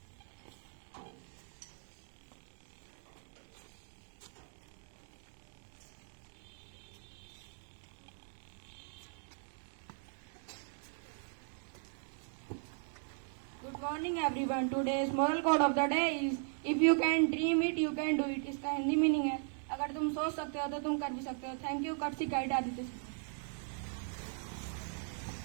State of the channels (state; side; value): silent; left; 52 dB below the other